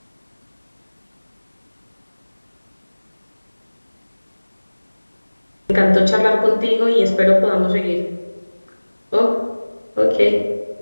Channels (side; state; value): both; inverted; correlation -1.00